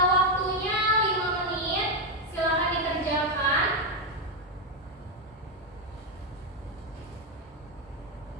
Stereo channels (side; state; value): both; normal; correlation 0.05